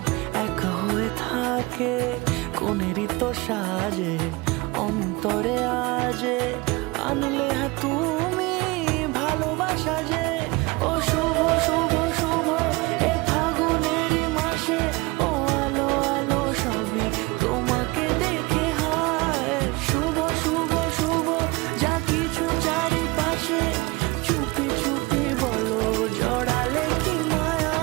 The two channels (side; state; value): left; quieter; 23.6 dB